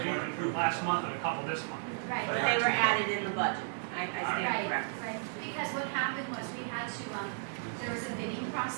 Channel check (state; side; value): silent; left; digital silence